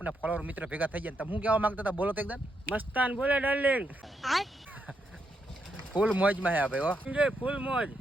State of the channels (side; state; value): both; normal; correlation 0.80